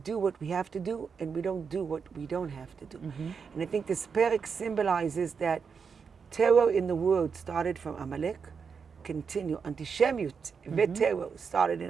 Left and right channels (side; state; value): left; quieter; 5.9 dB